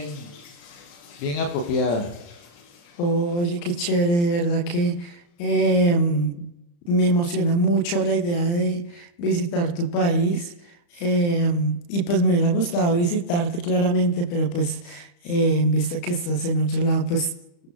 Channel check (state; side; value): late; right; 35 ms